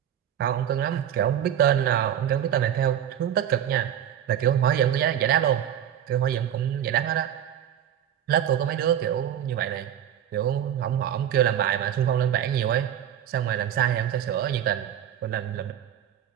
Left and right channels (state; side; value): quieter; left; 10.1 dB